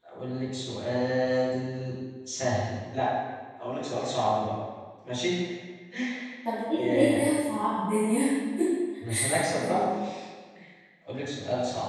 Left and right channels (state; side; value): identical; both; correlation 1.00